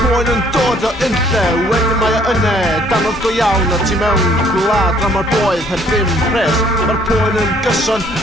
yn dod o unlle, wedyn mae o yne, danodd go iawn a ti mewn gwlad a mae'r boedd heb ddim pres. Mae'r poen yn gyson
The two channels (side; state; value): both; normal; correlation 0.62